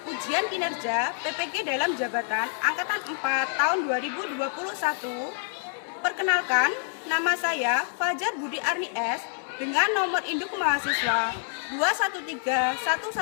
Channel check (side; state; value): right; silent; 60 dB below the other